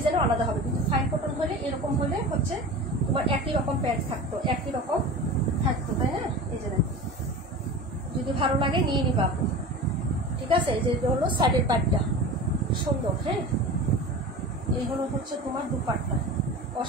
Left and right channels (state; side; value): normal; both; correlation 0.33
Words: আলাদা হবে। কিন্তু ফাইন কটন হলে এরকম হলে হচ্ছে তোমার একই রকম প্যান্ট থাকতো, একই রকম থাকতো, তাই না? এই যে যদি ভালো লাগে নিয়ে নিবা আপু, ঠিক আছে। এই যে হলো সাইডের পাটটা সুন্দর। হ্যাঁ, এই হলো হচ্ছে তোমার দুপাট্টা,